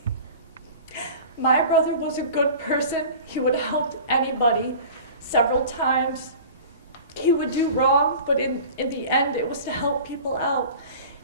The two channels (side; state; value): both; inverted; correlation -0.40